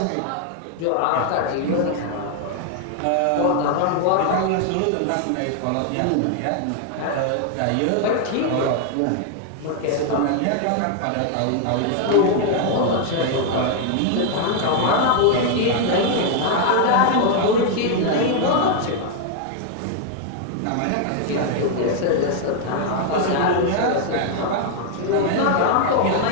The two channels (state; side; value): different; both; correlation 0.00